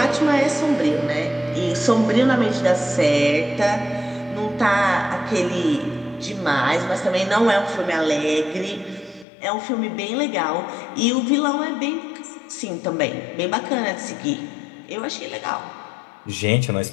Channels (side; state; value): right; drops out; at 9.2 s